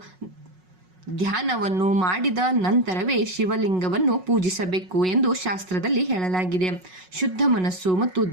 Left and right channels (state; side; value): late; left; 5.4 ms